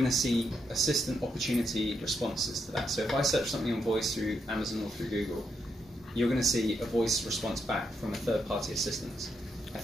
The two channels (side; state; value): both; normal; correlation 0.80